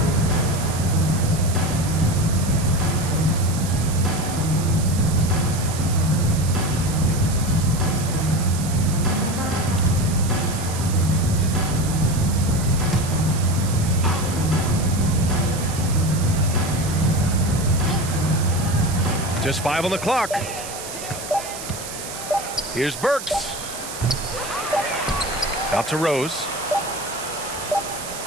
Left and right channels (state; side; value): noise; right; hiss, 10 dB below the sound